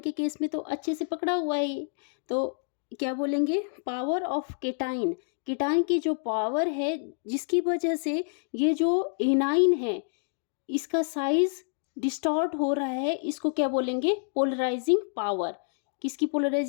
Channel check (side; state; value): right; silent; digital silence